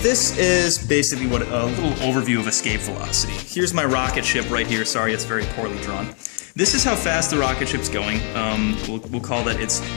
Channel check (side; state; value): right; quieter; 39.9 dB